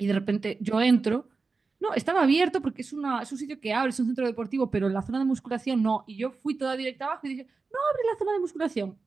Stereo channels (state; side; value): quieter; left; 4.3 dB